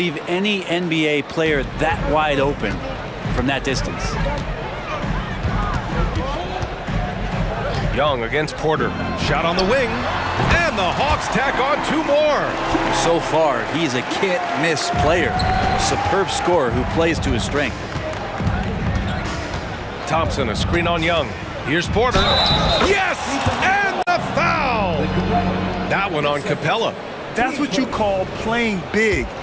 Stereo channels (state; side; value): identical; both; correlation 1.00